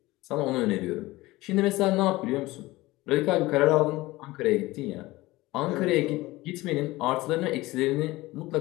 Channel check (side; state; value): right; quieter; 19.4 dB